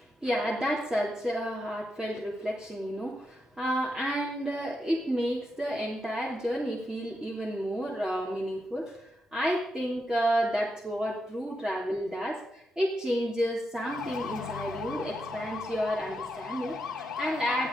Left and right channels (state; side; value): normal; both; correlation 0.84